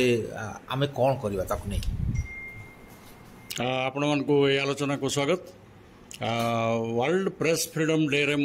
आमे कौन करवा ताकू नहीं। आपण मानकु ए आलोचना को स्वागत। वर्ल्ड प्रेस फ्रीडम डे रे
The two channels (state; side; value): identical; both; correlation 1.00